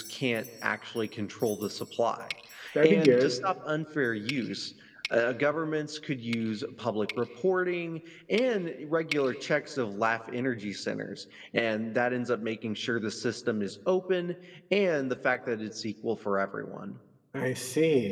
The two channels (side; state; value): both; identical; correlation 1.00